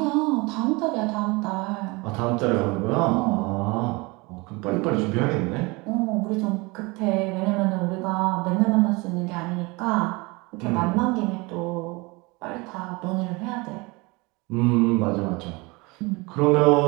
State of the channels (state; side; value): quieter; left; 25.4 dB